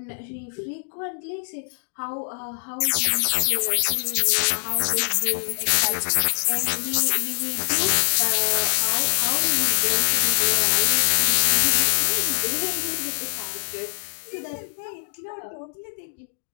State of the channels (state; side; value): silent; right; digital silence